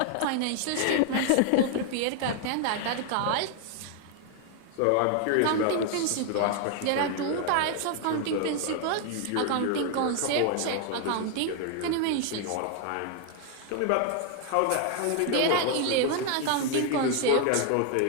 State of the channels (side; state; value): both; different; correlation 0.00